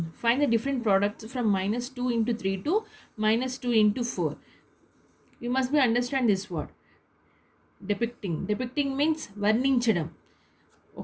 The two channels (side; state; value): both; identical; correlation 1.00